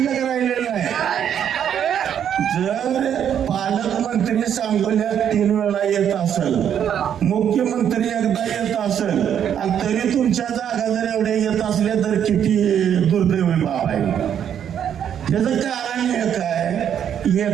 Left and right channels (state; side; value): quieter; left; 9.1 dB